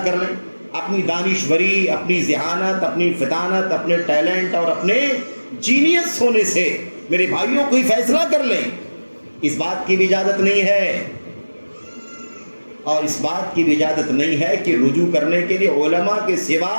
کر لیں، اپنی دانشوری، اپنی ذہانت، اپنی فطانت، اپنے ٹیلنٹ اور اپنے جینیس ہونے سے میرے بھائیوں کوئی فیصلہ کر لیں. اس بات کی بھی اجازت نہیں ہے. اور اس بات کی بھی اجازت نہیں ہے کہ رجوع کرنے کے لیے علماء کے سوا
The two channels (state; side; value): inverted; both; correlation -1.00